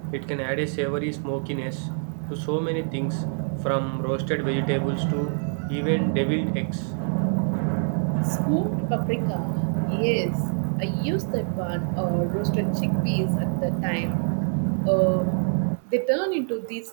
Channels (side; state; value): left; silent; 60 dB below the other